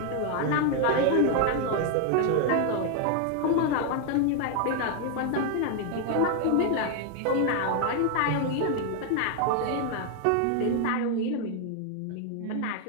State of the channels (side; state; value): both; different; correlation 0.00